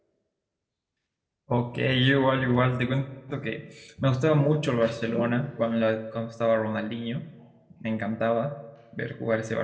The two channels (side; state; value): both; identical; correlation 1.00